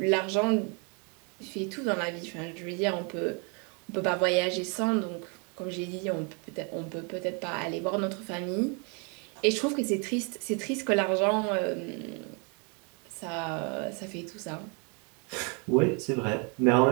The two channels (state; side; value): quieter; left; 34.8 dB